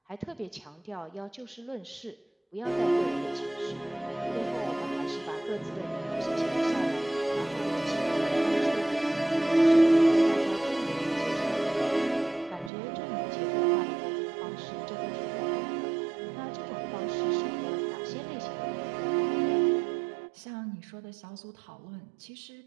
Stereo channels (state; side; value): drops out; left; at 12.7 s